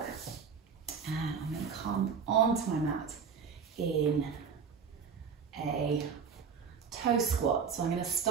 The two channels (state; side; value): quieter; left; 6.2 dB